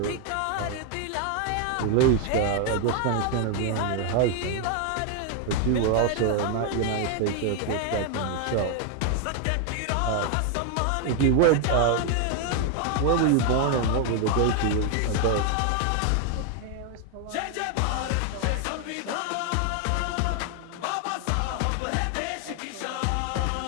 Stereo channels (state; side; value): different; both; correlation 0.01